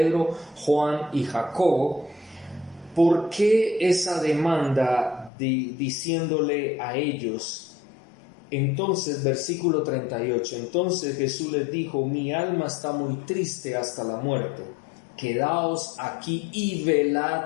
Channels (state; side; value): drops out; right; at 5.3 s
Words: Juan y Jacobo? ¿Por qué esa demanda diciéndole a ellos? Entonces, versículo 38, entonces Jesús les dijo: mi alma está muy triste hasta la muerte, quedaos aquí y